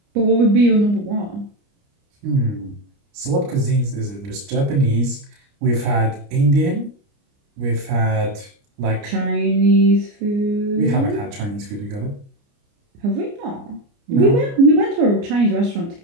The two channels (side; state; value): left; late; 29 ms